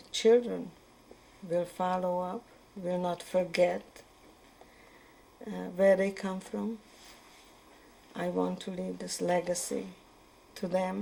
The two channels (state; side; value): identical; both; correlation 1.00